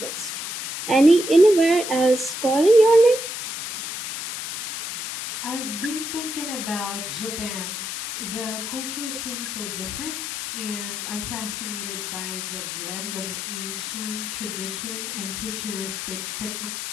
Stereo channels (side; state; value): left; noise; hiss, 5 dB below the sound